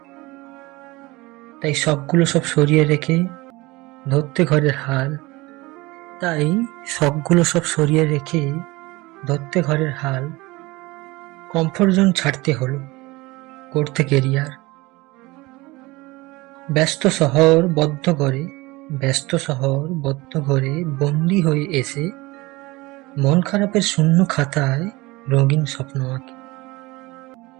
তাই শখগুলো সব সরিয়ে রেখে ধরতে ঘরের হাল তাই শখগুলো সব সরিয়ে রেখে ধরতে ঘরের হাল। কমফোর্ট জোন ছাড়তে হলো, করতে কেরিয়ার। ব্যস্ত শহর বদ্ধ ঘরে বন্দি হয়ে এসে মন খারাপের শূন্য খাতায় রঙিন স্বপ্ন আঁকে।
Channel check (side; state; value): left; quieter; 21.9 dB